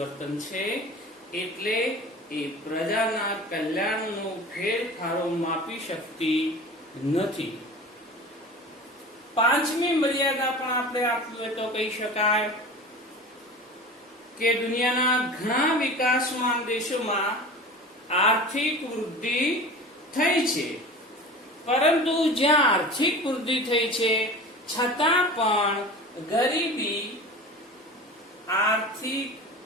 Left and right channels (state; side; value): normal; both; correlation 0.36